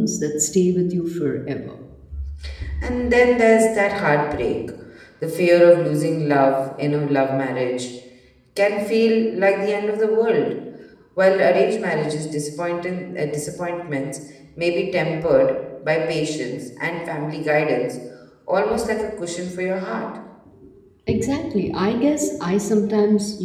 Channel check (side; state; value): both; identical; correlation 1.00